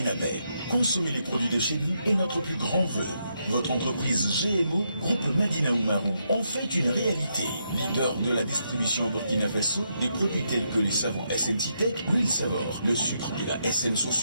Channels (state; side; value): inverted; both; correlation -0.79